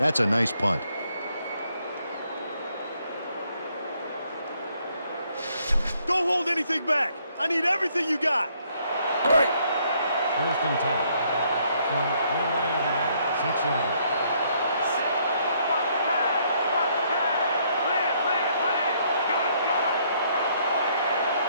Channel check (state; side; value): inverted; both; correlation -0.69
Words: a nice punt. Don't hold anything back. I need everything you got. First and 10. From your Iron Man, 6-yard.